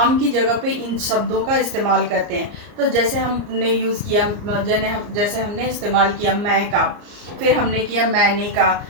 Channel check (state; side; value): late; left; 34 ms